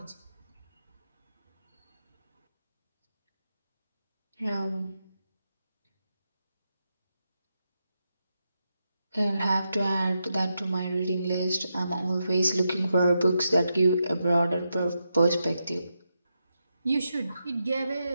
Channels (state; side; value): inverted; both; correlation -0.86